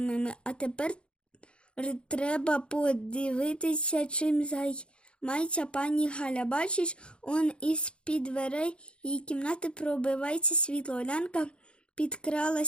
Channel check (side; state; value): right; late; 0.055 ms